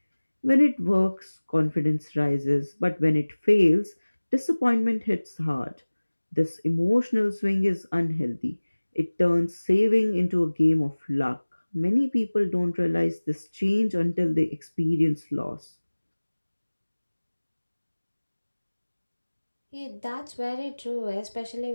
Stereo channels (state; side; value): inverted; both; correlation -1.00